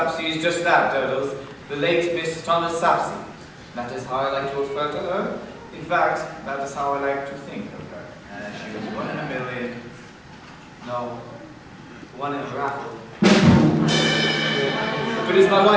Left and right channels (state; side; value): identical; both; correlation 1.00